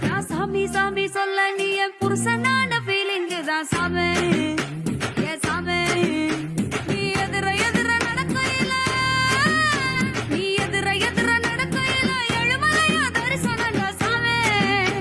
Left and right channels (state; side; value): identical; both; correlation 1.00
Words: நான் சாமி சாமி சொல்ல நீ என் புருஷனான ஃபீலிங் தான் சாமே ஏ சாமே நீ எதிர எதிர நடக்கையில நீ எதிர எதிர நடக்கையில எழுமலையா தரிசனம் சாமே